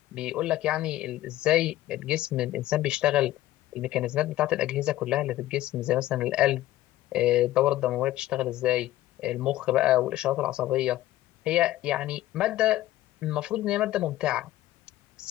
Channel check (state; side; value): quieter; right; 15.1 dB